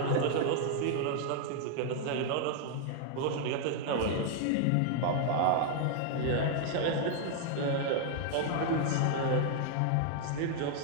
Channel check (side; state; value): both; different; correlation 0.00